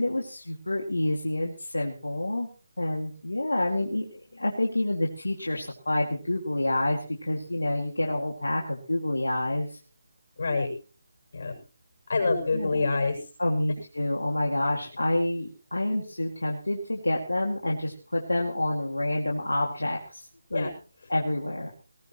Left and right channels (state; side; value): inverted; both; correlation -0.97